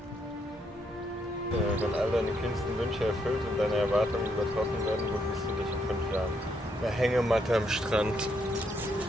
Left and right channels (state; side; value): normal; both; correlation 0.75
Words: Wenn all deine kühnsten Wünsche erfüllt und deine Erwartungen übertroffen werden, wo siehst du dich in 5 Jahren? Eine Hängematte am Strand.